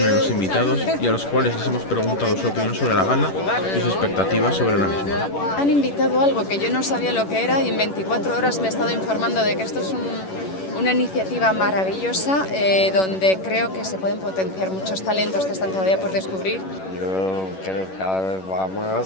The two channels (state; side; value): late; right; 11 ms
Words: los invitados y a los cuales les hemos preguntado su opinión sobre la gala y sus expectativas sobre la misma. Han invitado algo que yo no sabía lo que era y en 24 horas me he estado informando de que esto es una iniciativa maravillosa donde creo que se pueden potenciar muchos talentos que están todavía por descubrir. Yo creo que cada vez va